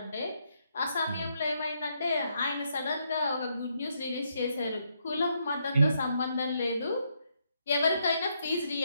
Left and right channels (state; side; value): inverted; both; correlation -0.77